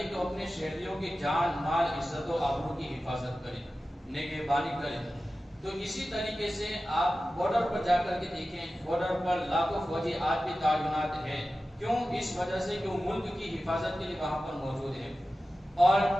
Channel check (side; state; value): both; normal; correlation 0.94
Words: کہ وہ اپنے شہریوں کی جان، مال، عزت و آبرو کی حفاظت کرے، نگہبانی کرے. تو اسی طریقے سے آپ بارڈر پر جا کر کے دیکھیں، بارڈر پر لاکھوں فوجی آج بھی تعینات ہیں. کیوں؟ اس وجہ سے کہ وہ ملک کی حفاظت کے لیے وہاں پر موجود ہے. اور